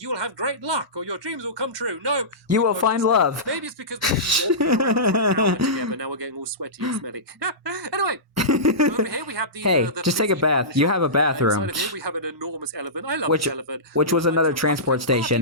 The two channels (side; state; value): both; normal; correlation -0.19